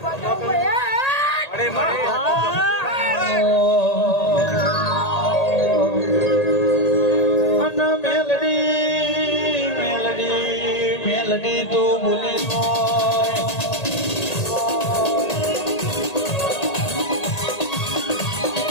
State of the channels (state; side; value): late; right; 1.8 ms